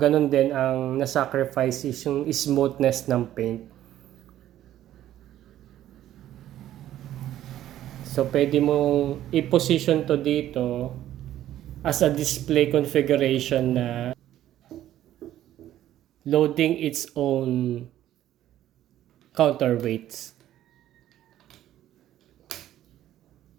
din ang nasacrifice is yung smoothness ng paint. So, pwede mong i-position to dito as a display configuration na loading its own counterweights.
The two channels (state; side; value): quieter; left; 12.6 dB